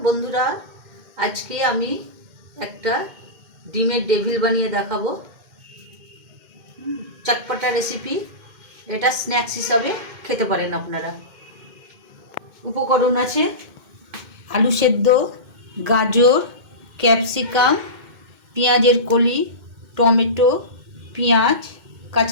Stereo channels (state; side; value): late; left; 2.1 ms